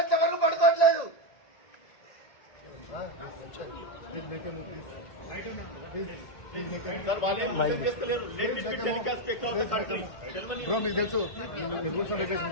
వరకు పడుకోవట్లేదు. బ్రో మీకు తెలుసు, రూల్స్ అండ్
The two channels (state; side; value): late; right; 1.6 ms